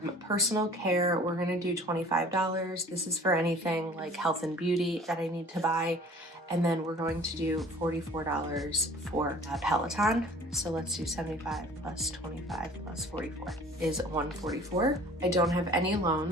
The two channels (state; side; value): normal; both; correlation 0.48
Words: Personal care, we're going to do $25. This is for anything like health and beauty that I need to buy. And then we're going to do $44 for Peloton. So let's do 75 plus 25 plus 44 is 144. I don't have any